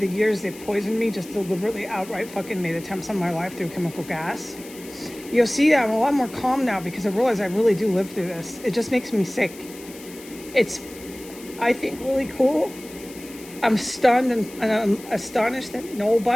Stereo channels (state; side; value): noise; left; hiss, 18 dB below the sound